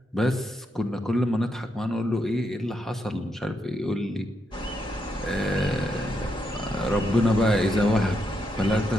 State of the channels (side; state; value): both; normal; correlation 0.81